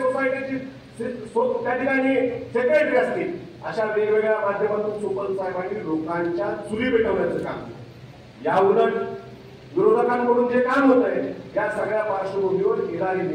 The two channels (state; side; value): identical; both; correlation 1.00